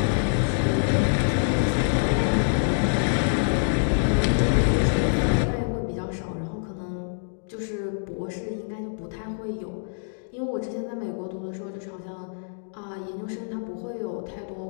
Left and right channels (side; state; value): right; silent; digital silence